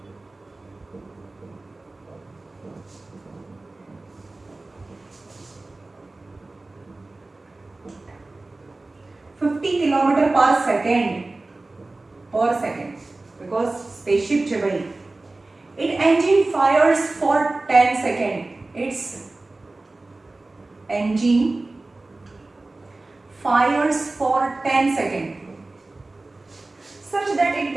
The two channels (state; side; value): quieter; left; 3.1 dB